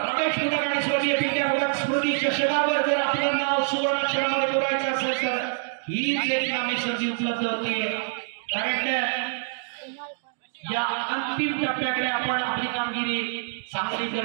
मुदक आणि स्वर्गीय पिंट्या मुदक स्मृती चषकावर जर आपलं नाव सुवर्ण अक्षरामध्ये कोरायचं असेल तर हीच एक नामी संधी उपलब्ध होती कारण या अंतिम टप्प्याकडे आपण आपली कामगिरी चांगली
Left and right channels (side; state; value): left; silent; digital silence